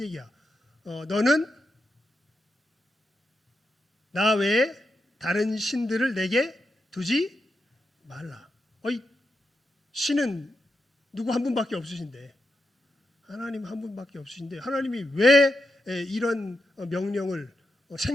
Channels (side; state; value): both; normal; correlation 0.85